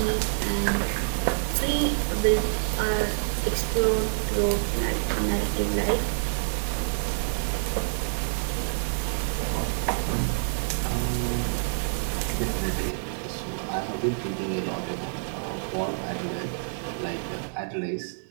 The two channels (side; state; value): left; silent; digital silence